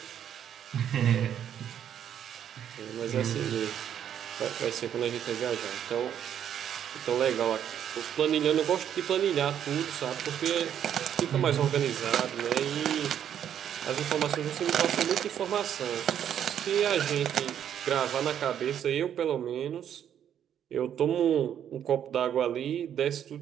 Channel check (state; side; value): quieter; left; 9.5 dB